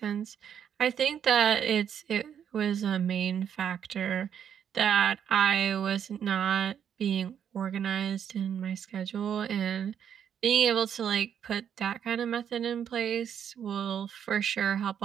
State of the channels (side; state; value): left; quieter; 8.6 dB